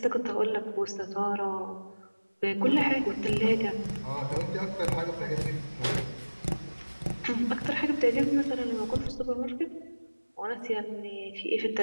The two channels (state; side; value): inverted; both; correlation -1.00